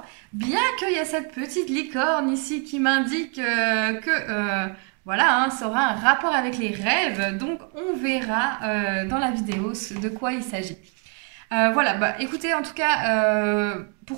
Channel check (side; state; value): left; quieter; 35.7 dB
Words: bien qu'il y a cette petite licorne ici qui m'indique que voilà, hein, ça aura un rapport avec les rêves, donc on verra dans la vidéo de quoi il s'agit. Voilà, écoutez, en tout cas,